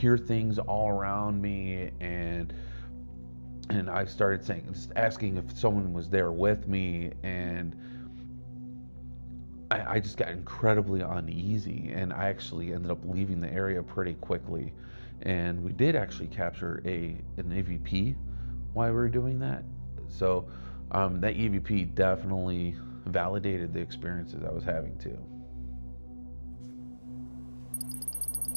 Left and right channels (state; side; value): inverted; both; correlation -1.00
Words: things all around me, and I started just asking if someone was there with me, and I just got incredibly uneasy, and I actually ended up leaving the area pretty quickly. And we did actually capture an EVP while we were doing that. So that EVP definitely validated the experiences I was having too.